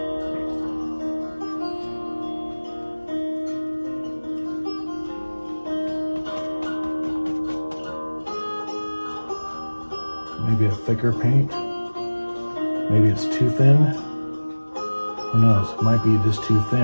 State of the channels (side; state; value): both; inverted; correlation -1.00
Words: Maybe a thicker paint. Maybe it's too thin. Who knows? It might be just too